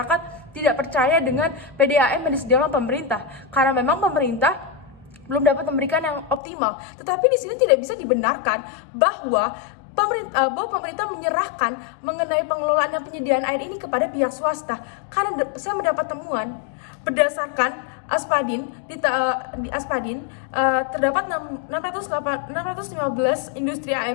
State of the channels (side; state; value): right; drops out; at 6.4 s